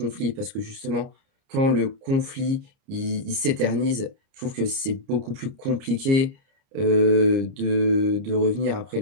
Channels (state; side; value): late; left; 30 ms